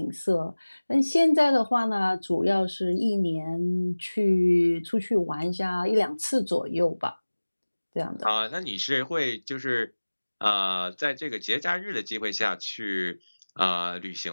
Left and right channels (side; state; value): both; inverted; correlation -1.00